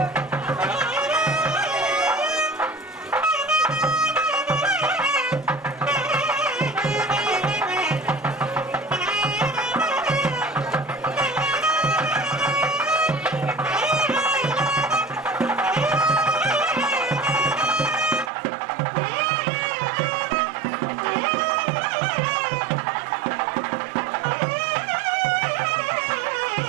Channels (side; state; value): left; drops out; at 18.3 s